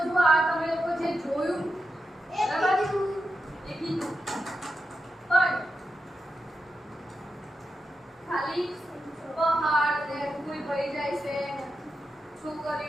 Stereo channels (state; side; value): normal; both; correlation 0.88